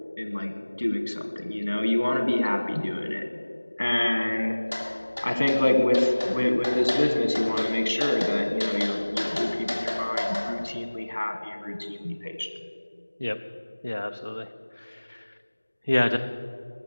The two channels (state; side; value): inverted; both; correlation -1.00